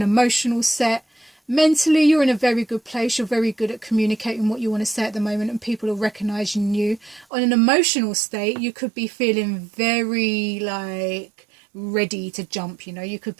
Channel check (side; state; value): left; drops out; at 7.2 s